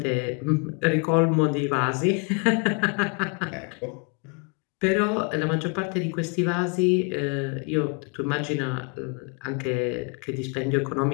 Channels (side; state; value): right; quieter; 34.9 dB